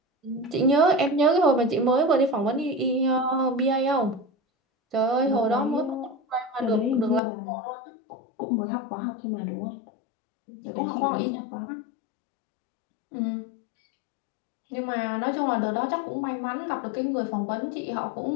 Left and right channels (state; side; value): drops out; right; at 7.2 s